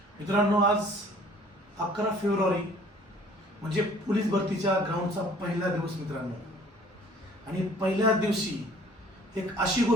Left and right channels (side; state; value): both; normal; correlation 0.53